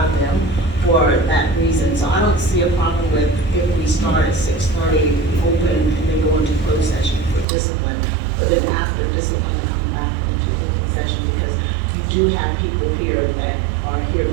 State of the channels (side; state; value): left; drops out; at 7.5 s